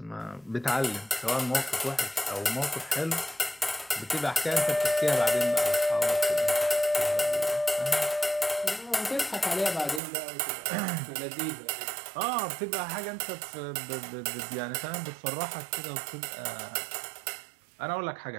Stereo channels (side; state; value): left; drops out; at 10.0 s